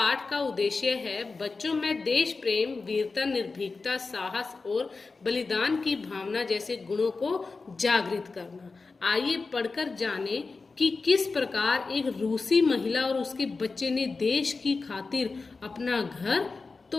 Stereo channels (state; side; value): quieter; right; 4.1 dB